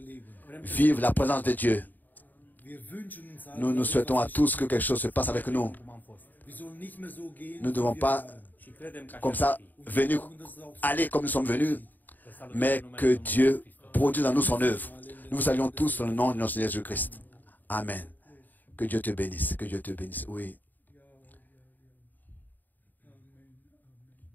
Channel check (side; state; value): right; late; 0.087 ms